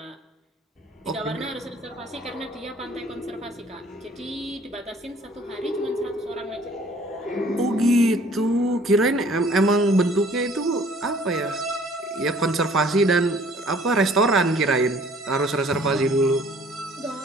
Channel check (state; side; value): normal; both; correlation 0.56